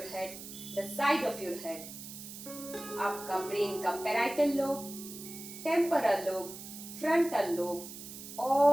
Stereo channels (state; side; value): noise; right; hiss, 12 dB below the sound